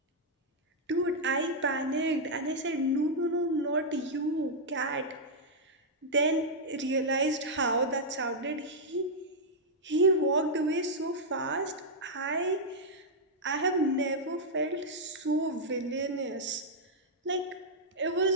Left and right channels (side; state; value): both; normal; correlation -0.05